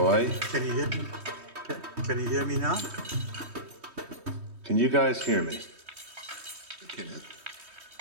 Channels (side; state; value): left; late; 3.2 ms